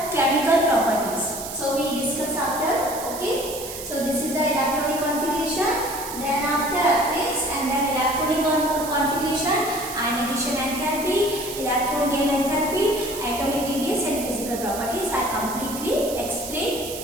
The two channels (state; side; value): noise; right; hiss, 10 dB below the sound